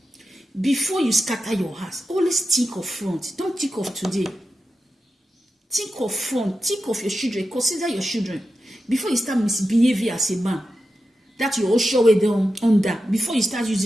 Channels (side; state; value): both; normal; correlation 0.90